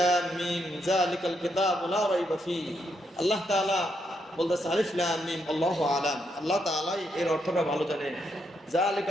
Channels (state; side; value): normal; both; correlation 0.78